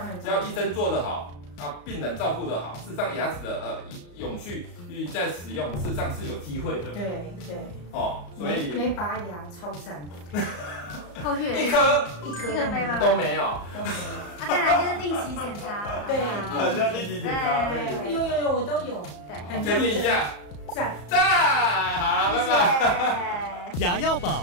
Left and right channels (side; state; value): right; late; 34 ms